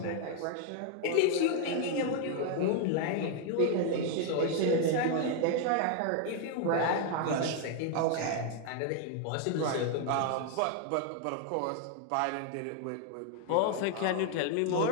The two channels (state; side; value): different; both; correlation 0.01